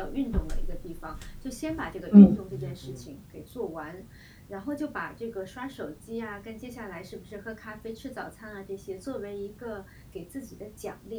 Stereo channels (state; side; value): identical; both; correlation 1.00